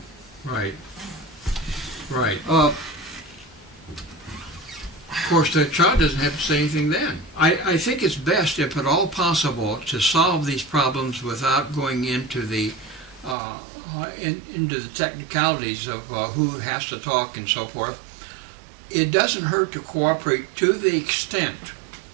Right. Right. Of course, the child doesn't have to say anything then. I think it's best, if at all possible, to solve these problems without going into the into the technicalities of who has to talk and so forth. It doesn't hurt to cooperate to the extent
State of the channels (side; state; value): left; drops out; at 13.4 s